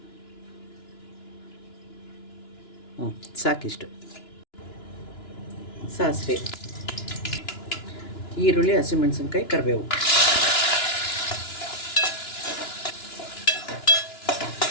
ಸಾಕಿಷ್ಟು ಸಾಸಿವೆ, ಈರುಳ್ಳಿ, ಹಸಿಮೆಣಸಿನ್ಕಾಯಿ, ಕರಿಬೇವು.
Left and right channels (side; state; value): right; late; 2.9 ms